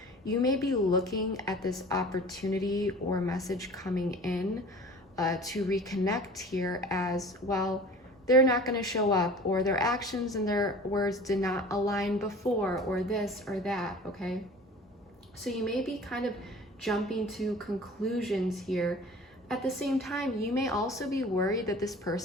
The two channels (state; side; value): normal; both; correlation 0.43